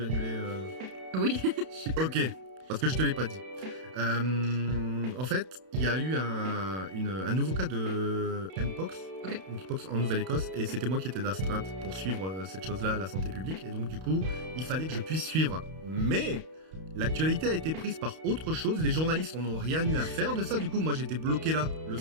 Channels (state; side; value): late; left; 32 ms